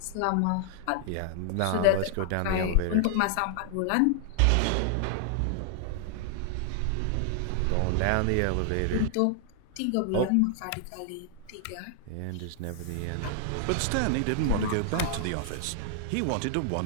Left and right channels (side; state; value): both; different; correlation 0.00